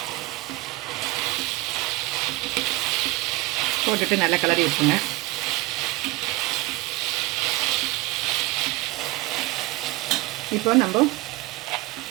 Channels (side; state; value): left; quieter; 21.5 dB